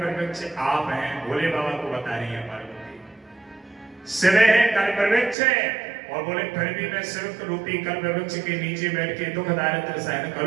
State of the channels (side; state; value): left; drops out; at 5.4 s